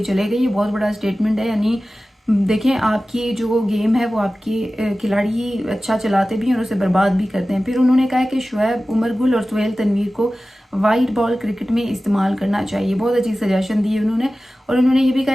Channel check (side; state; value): both; normal; correlation 0.96